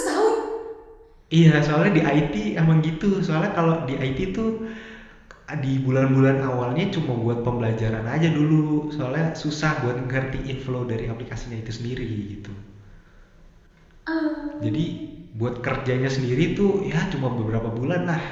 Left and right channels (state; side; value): identical; both; correlation 1.00